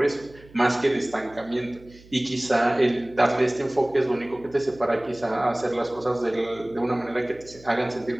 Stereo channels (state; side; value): noise; right; hum, 23 dB below the sound